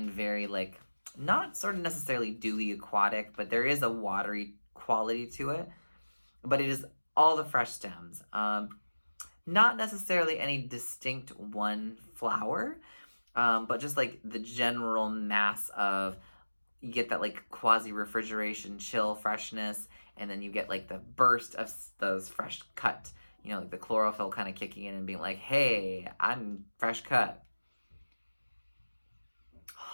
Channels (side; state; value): both; inverted; correlation -1.00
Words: very like, not sort of necessarily dewy aquatic, but there is a watery quality to it. But it is all the fresh stems. Not necessarily any distinct one flower, but just like the general mass of, you get that like quasi-refrigeration chill freshness, and then you get like the burst of those fresh cut, like the chlorophyll kind of kicking in and being like, hey, I'm fresh cut.